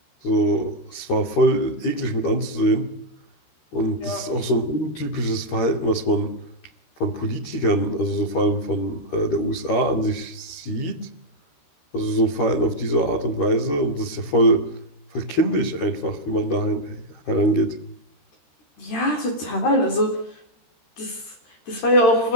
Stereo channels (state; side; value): late; right; 13 ms